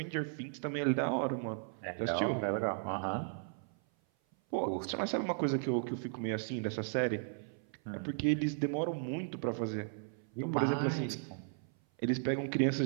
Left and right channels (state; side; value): silent; left; 54 dB below the other